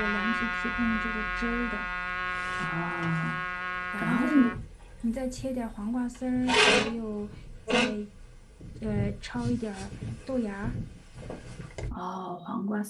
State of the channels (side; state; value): both; identical; correlation 1.00